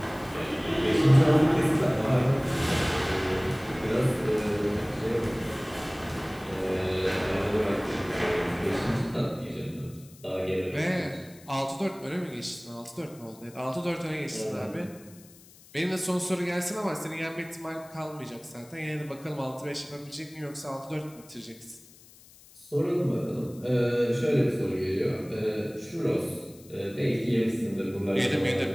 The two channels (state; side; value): noise; left; hiss, 23 dB below the sound